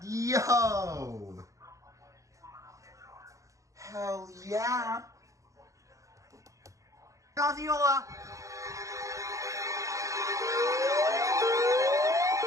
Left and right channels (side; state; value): left; late; 0.15 ms